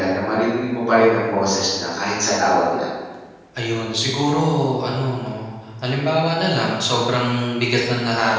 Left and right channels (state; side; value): identical; both; correlation 1.00